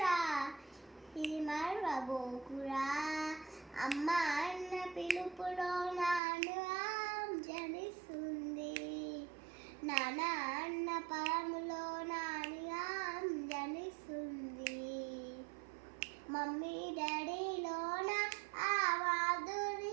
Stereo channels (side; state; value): left; drops out; at 6.2 s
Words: ఇది మరవబోకురా. అమ్మ అన్న పిలుపులో నాను జనిస్తుంది, నాన్న అన్న పరములో నానిగా జనిస్తుంది. మమ్మీ డాడీలోన ఆ